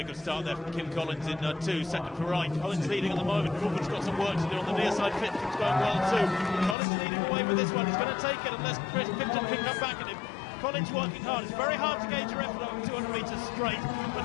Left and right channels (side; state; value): right; drops out; at 6.8 s